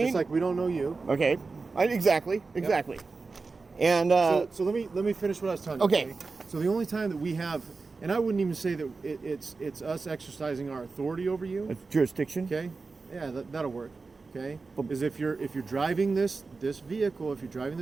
Just like we don't know you. Okay. Exactly. And So let me finish what I was telling you. Okay. So the only time that we have, and I wouldn't even say that it's us exercising our authority over you. it's jurisdiction. Okay. Yeah, that'll work. Okay. Is if you're driving this vehicle, on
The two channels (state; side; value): quieter; left; 4.1 dB